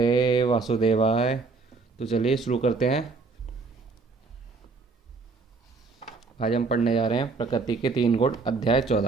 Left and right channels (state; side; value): quieter; left; 4.2 dB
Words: वासुदेवाय। तो चलिए शुरू करते हैं। आज हम पढ़ने जा रहे हैं प्रकृति के 3 गुण, अध्याय